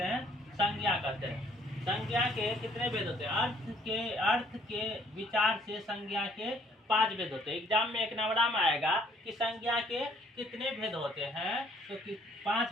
हैं, संज्ञा कहते हैं। संज्ञा के कितने भेद होते हैं, अर्थ के विचार से संज्ञा के 5 भेद होते हैं। एग्जाम में एक नंबर में आएगा कि संज्ञा के कितने भेद होते हैं, तो 5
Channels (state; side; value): normal; both; correlation 0.61